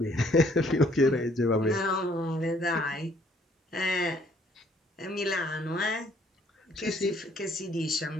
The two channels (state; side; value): normal; both; correlation 0.63